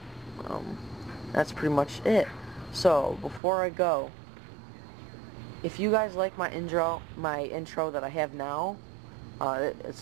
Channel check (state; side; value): drops out; left; at 3.4 s